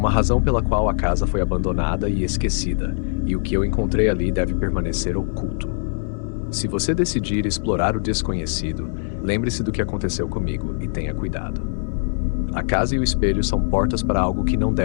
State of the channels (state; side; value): silent; right; 63 dB below the other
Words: razão pela qual a casa foi abandonada e esquecida, e o que eu encontrei ali deve permanecer oculto. Se você decidir explorar o desconhecido, lembre-se do que aconteceu comigo e tenha cuidado. A casa e o espelho são portas para algo que não